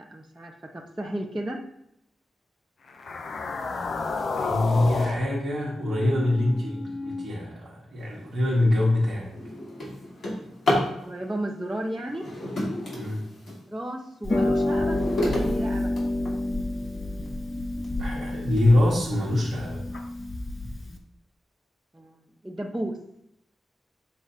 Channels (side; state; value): both; normal; correlation 0.93